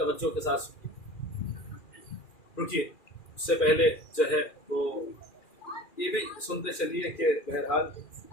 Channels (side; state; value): right; late; 2.4 ms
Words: کے ساتھ سنیے۔ رکیے، اس سے پہلے جو ہے وہ یہ بھی سنتے چلیے کہ بہرحال